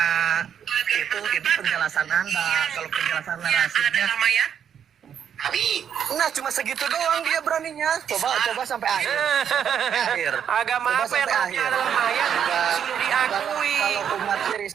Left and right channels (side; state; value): left; quieter; 8.5 dB